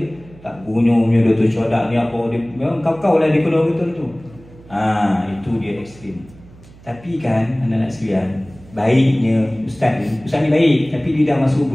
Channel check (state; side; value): noise; right; hum, 23 dB below the sound